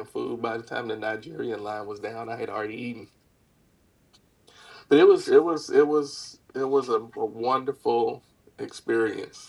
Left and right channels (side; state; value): both; identical; correlation 1.00